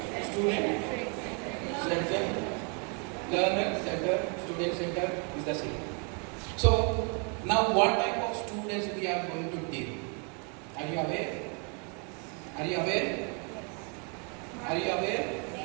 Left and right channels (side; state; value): left; quieter; 36.7 dB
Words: center, learner center, student center is the same. So now what type of students we are going to deal? Are you aware? Are you aware? Are you aware?